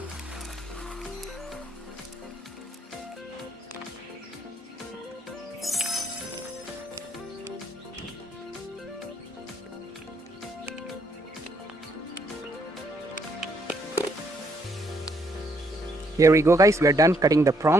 Here we go guys, we are done cutting the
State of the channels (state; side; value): normal; both; correlation 0.72